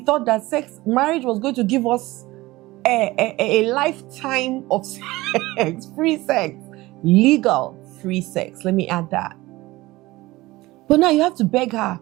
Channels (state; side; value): quieter; left; 19.5 dB